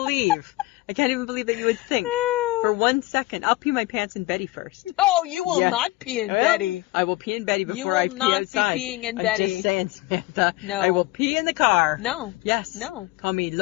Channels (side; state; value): right; quieter; 19.6 dB